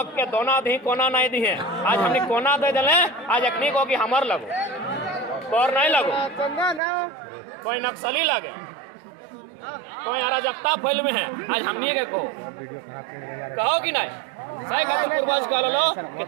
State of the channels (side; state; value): left; drops out; at 6.8 s